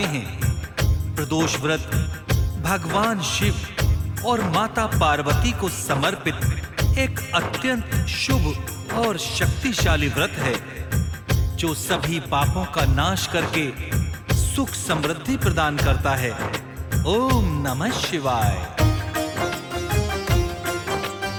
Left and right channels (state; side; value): identical; both; correlation 1.00